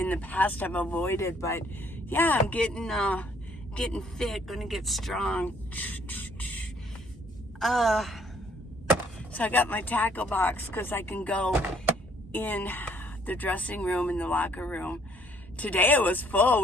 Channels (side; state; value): both; normal; correlation 0.64